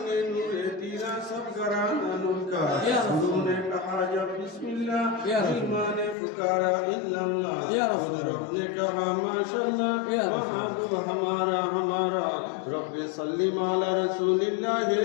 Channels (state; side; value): drops out; right; at 6.2 s